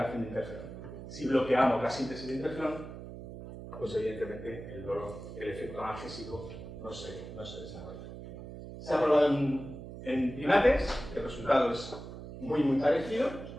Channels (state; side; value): noise; right; hum, 11 dB below the sound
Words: de interferón. Si bloqueamos la síntesis de interferón, pues evidentemente el efecto analgésico no se desarrolla. Se ha probado en primates, el resultado es muy parecido,